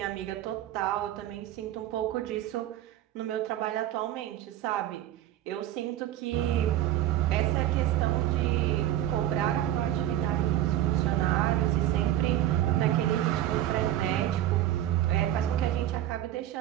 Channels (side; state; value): left; quieter; 12.8 dB